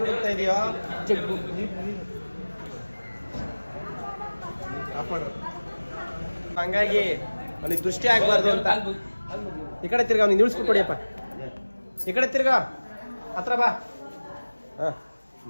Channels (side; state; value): both; inverted; correlation -1.00